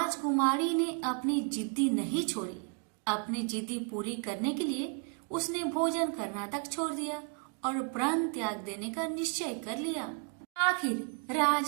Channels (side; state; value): left; quieter; 37.1 dB